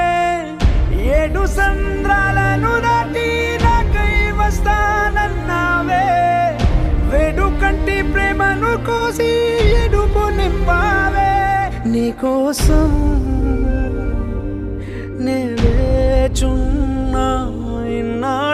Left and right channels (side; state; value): both; identical; correlation 1.00